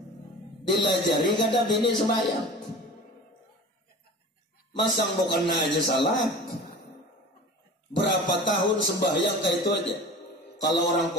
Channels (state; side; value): normal; both; correlation 0.37